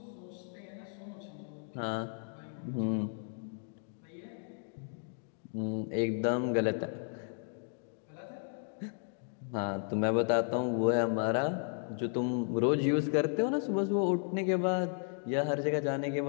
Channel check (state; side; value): silent; right; 55 dB below the other